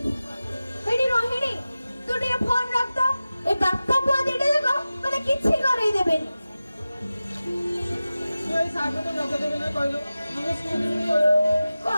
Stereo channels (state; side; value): inverted; both; correlation -0.96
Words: एडी रोहिणी तू टे फोन रख तो ए बाप्पा पुआ देडे देखो मने किछि करई देबे तू ए सागो तो रख देबे ना कहलो मने स्कूल को